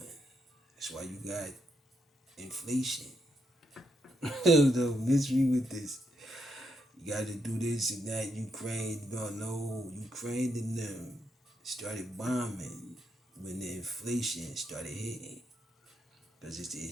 That's why you got inflation. The mystery with this. You got to do this and that. Ukraine and them started bombing when the inflation started hitting. Because it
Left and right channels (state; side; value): normal; both; correlation 0.79